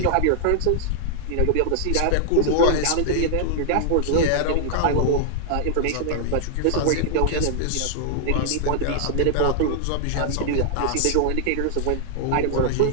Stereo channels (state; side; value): different; both; correlation -0.01